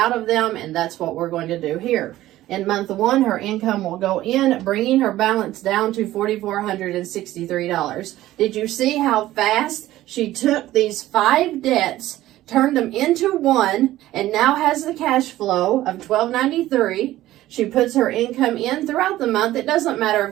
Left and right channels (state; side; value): quieter; left; 15.1 dB